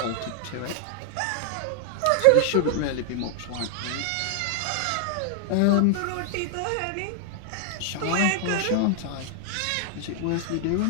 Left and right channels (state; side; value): different; both; correlation 0.00